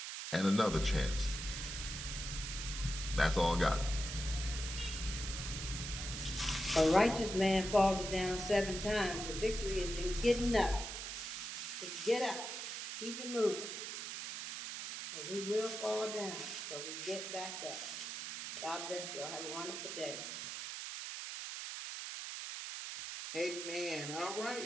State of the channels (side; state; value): right; noise; hiss, 6 dB below the sound